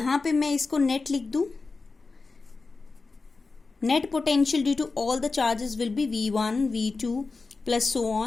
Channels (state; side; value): quieter; right; 4.0 dB